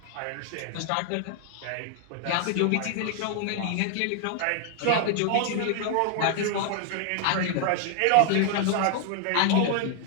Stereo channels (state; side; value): different; both; correlation 0.00